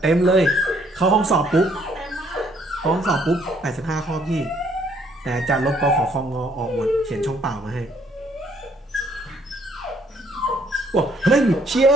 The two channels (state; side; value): normal; both; correlation 0.65